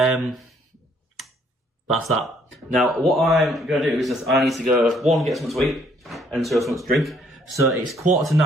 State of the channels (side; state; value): both; normal; correlation 0.65